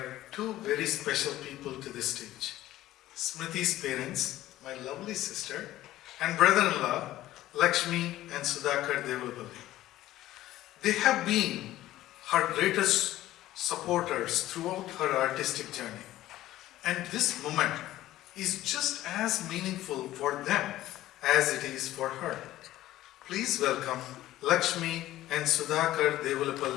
two very special people to the stage. Smriti's parents, my lovely sister, and brother-in-law, Lakshmi and Sudhakar Devulapalli. They have been her greatest supporters throughout her artistic journey. And this moment is just as meaningful for them as it is for her. Please welcome Lakshmi and Sudhakar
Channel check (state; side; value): quieter; right; 14.9 dB